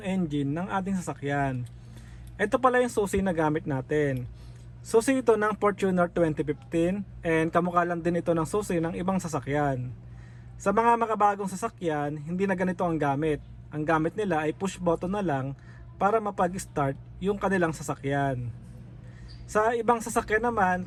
engine ng ating sasakyan. Ito pala yung susi na gamit natin. Susi ito ng Fortuner 2015 and kamukha lang din ito ng susi ng ibang sasakyan. Sa mga makabagong sasakyan, hindi na ganito ang gamit. Ang gamit nila ay push button na lang para mapag-start yung kanilang sasakyan. Sa ibang sasakyan naman,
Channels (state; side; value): identical; both; correlation 1.00